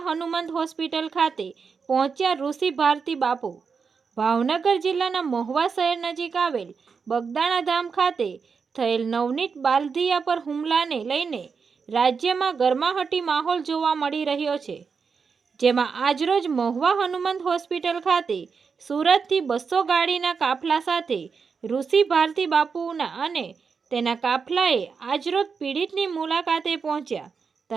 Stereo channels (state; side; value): quieter; left; 5.6 dB